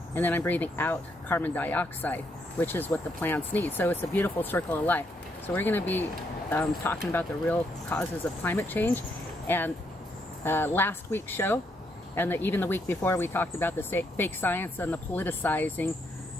and then I'm breathing out carbon dioxide, which is what the plants need. So it's a beautiful circle of life. So we're going to be talking about the real causes of climate change. And last week's show, and even the week before, we talked about the fake science and the politicizing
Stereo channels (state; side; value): normal; both; correlation 0.76